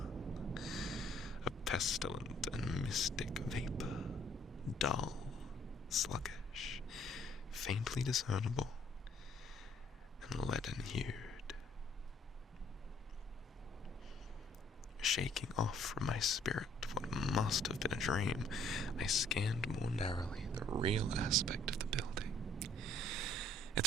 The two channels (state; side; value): normal; both; correlation 0.62